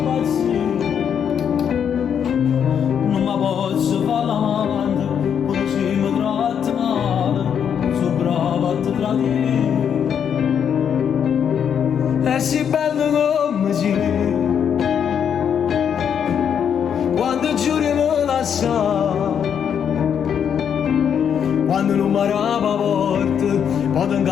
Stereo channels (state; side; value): quieter; right; 8.1 dB